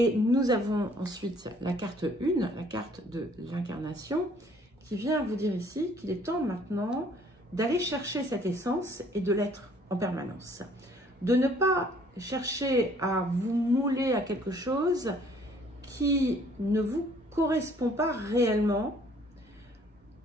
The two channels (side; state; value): both; normal; correlation 0.59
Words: nous avons ensuite la carte 1, la carte de l'incarnation, qui vient vous dire ici qu'il est temps maintenant d'aller chercher cette essence et de l'être en permanence. De ne pas chercher à vous mouler à quelque chose qui ne vous correspond pas réellement,